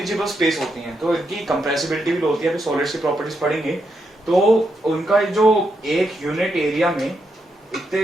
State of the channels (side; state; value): both; normal; correlation 0.82